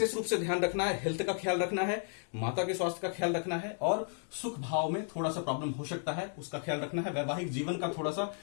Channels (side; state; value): right; silent; 55 dB below the other